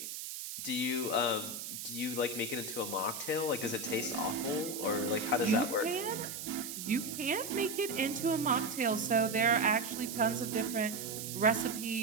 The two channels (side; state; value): right; noise; hiss, 7 dB below the sound